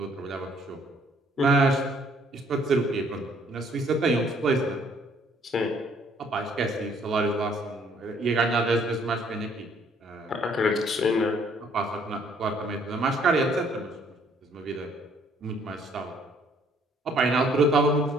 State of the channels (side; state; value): both; normal; correlation 0.63